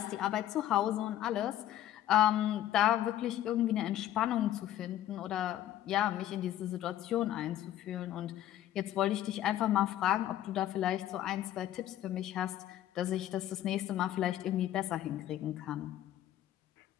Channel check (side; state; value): right; quieter; 12.5 dB